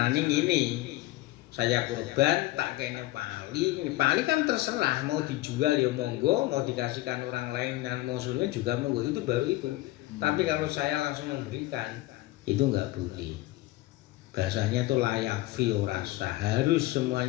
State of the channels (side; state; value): right; quieter; 18.1 dB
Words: ngene. Saya kurban tak kene pali kan terserah, mau dijual ya monggo, mau dikasihkan orang lain dan muslimin juga monggo, itu baru itu. Tapi kalau saya langsung memberikan, itu enggak boleh. Bahasanya itu layak fi rasa, harus